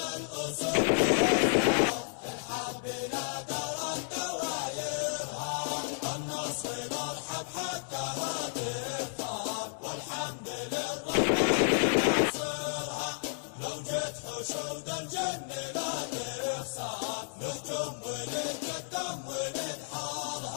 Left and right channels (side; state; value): right; silent; digital silence